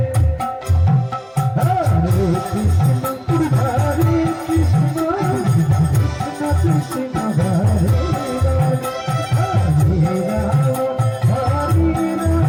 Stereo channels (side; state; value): both; identical; correlation 1.00